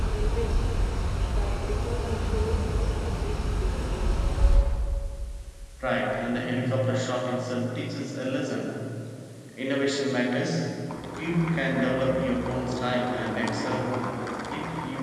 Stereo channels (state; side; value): identical; both; correlation 1.00